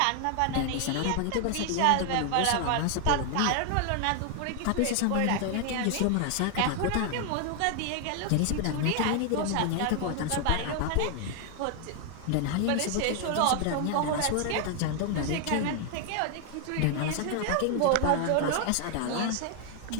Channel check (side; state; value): both; different; correlation 0.00